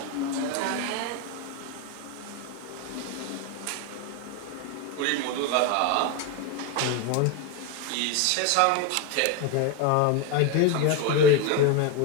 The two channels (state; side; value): different; both; correlation 0.02